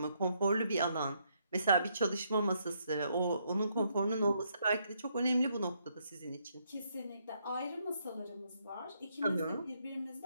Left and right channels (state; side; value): inverted; both; correlation -0.74